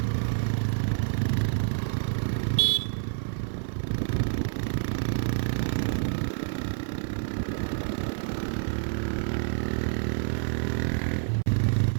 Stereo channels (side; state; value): left; silent; 59 dB below the other